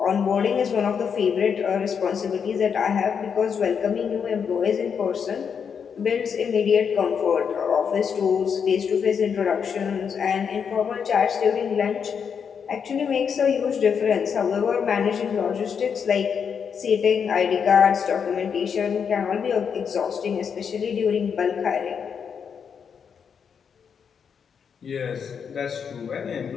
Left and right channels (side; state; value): right; quieter; 6.9 dB